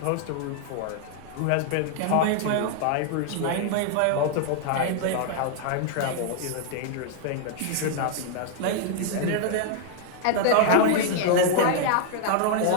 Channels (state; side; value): different; both; correlation 0.00